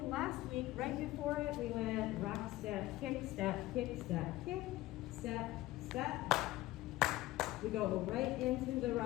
last week, right before it, we went rock step, kick step, kick step, kick step, step. We go right into the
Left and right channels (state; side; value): quieter; right; 17.2 dB